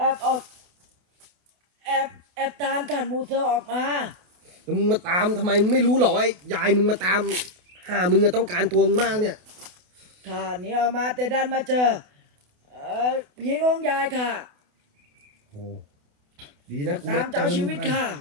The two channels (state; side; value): late; left; 28 ms